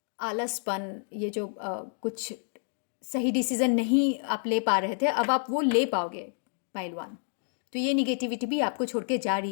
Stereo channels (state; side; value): silent; right; digital silence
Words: आलसपन, ये जो कुछ सही डिसीजन नहीं आप ले पा रहे थे, अब आप वो ले पाओगे पहलवान। तो ये निगेटिविटी भी आपको छोड़ के जा